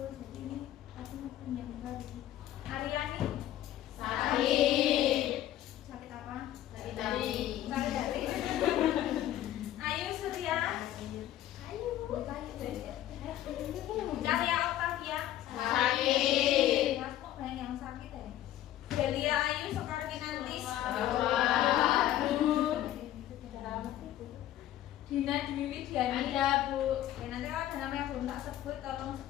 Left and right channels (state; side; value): quieter; right; 12.9 dB